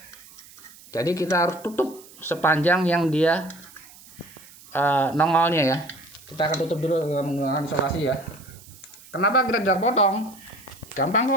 Jadi kita harus tutup sepanjang yang dia nongolnya ya. Kita akan tutup dulu dengan menggunakan isolasi ya. Kenapa kita tidak potong? Gampang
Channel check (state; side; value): noise; right; hiss, 22 dB below the sound